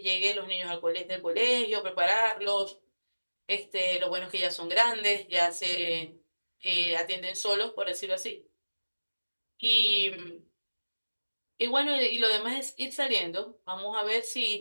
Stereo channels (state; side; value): inverted; both; correlation -1.00